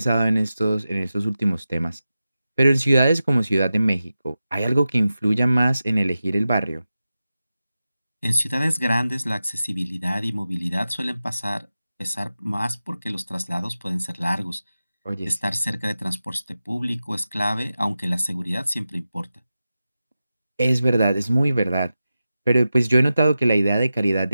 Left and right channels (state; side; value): inverted; both; correlation -0.93